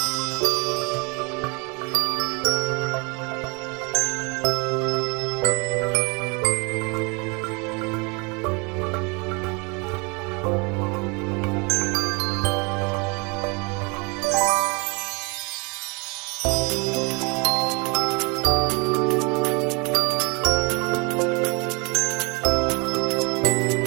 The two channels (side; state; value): left; quieter; 30.4 dB